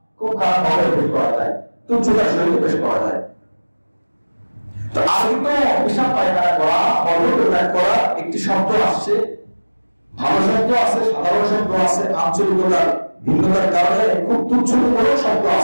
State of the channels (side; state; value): both; inverted; correlation -1.00